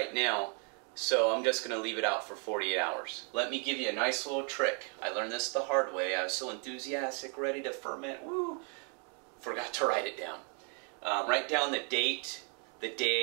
now, so I'm just going to leave it out for 48 hours. Let me give you a nice little trick. I learned this the hard way. I was so enthusiastic, ready to ferment, woo! Forgot to write it down. Write down the date, the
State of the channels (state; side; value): quieter; left; 36.3 dB